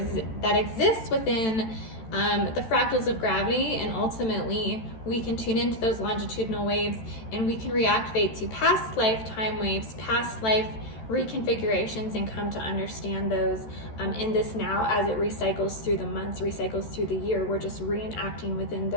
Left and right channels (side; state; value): right; late; 13 ms